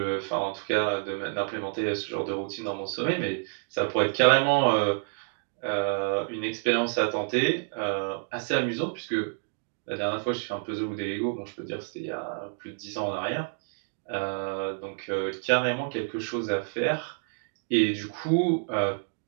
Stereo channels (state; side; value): silent; left; digital silence